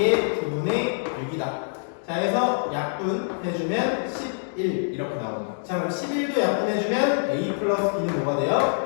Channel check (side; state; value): right; silent; digital silence